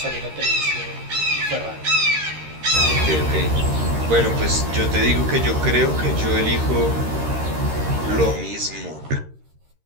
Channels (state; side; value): late; left; 13 ms